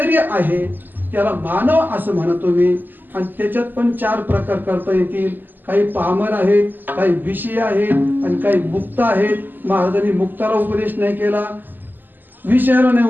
आहे त्याला मानव असं म्हणतो मी. आणि त्याच्यात पण 4 प्रकार करता येतील. काही पामर आहेत, काही विषय आहेत आणि काही मुक्त आहेत. महाराजांनी मुक्ताला उपदेश नाही केला, विषयाला नाही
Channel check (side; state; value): left; late; 0.089 ms